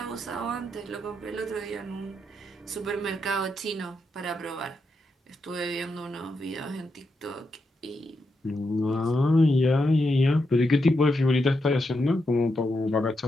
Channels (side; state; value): both; normal; correlation 0.84